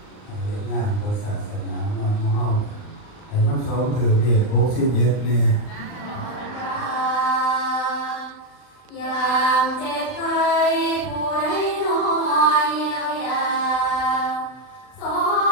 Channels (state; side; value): late; right; 39 ms